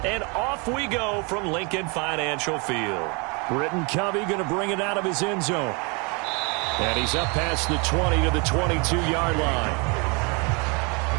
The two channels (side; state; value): left; quieter; 31.5 dB